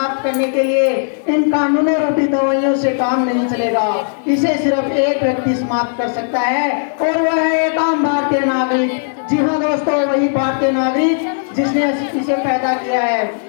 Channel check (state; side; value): silent; right; digital silence